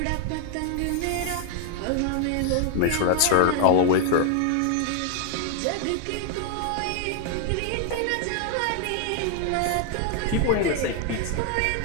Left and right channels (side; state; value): both; different; correlation 0.00